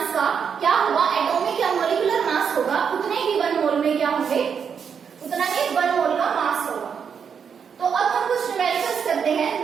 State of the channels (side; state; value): left; quieter; 6.9 dB